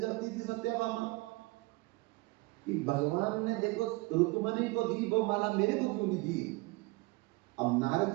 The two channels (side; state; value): left; quieter; 23.9 dB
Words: थी सत्याभामा कि भगवान ने देखो रुक्मिणी को दी वो माला, मेरे को क्यों नहीं दी। अब नारद